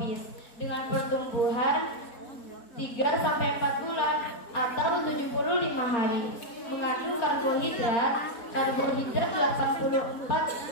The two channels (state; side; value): late; right; 4.1 ms